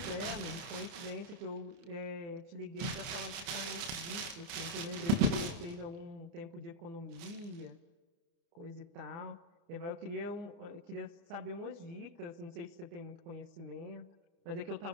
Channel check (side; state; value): left; late; 30 ms